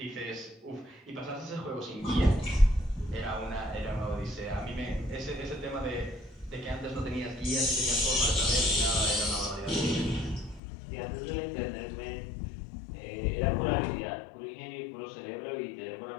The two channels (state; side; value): drops out; right; at 10.6 s